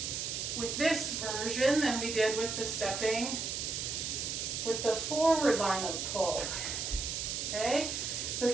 with this version than we did with the stepping with the forward line of pull. Okay, so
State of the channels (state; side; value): noise; right; hiss, 3 dB below the sound